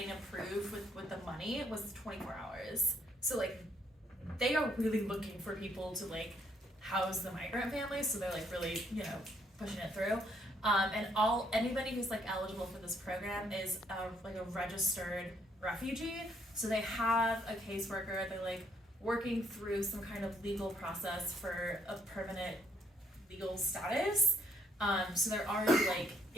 approved with the money was 24 hours. So like they are really looking for people to like house the migrant families, so they're like really, pushing it through. And anybody who's like eligible for this program is like a registered refugee. So they have a caseworker, they're like working through some kind of legal process for a permanent legal status. So they're already like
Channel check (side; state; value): both; normal; correlation 0.70